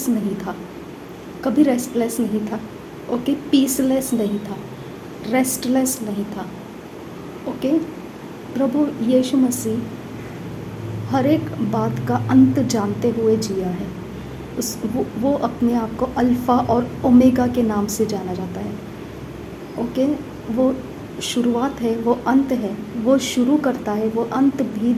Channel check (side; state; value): both; identical; correlation 1.00